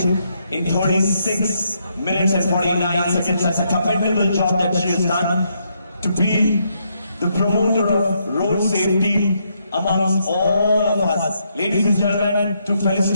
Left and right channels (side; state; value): both; inverted; correlation -0.77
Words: in 36 minutes and 49 seconds. That's a commendable job that she has done to be the promoter of road safety amongst all of us. Ladies and gentlemen, to